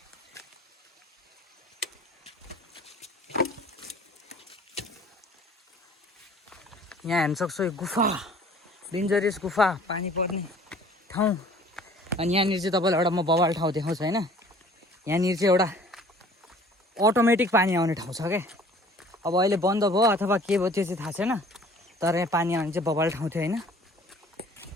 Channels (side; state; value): both; normal; correlation 0.51